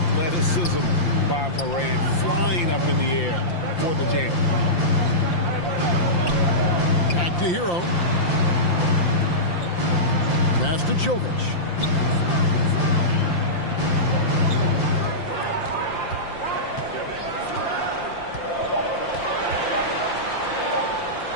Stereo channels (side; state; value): right; late; 5.8 ms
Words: by Morant, flying up in the air for the jam. Back to Hero. Pass to Jovic.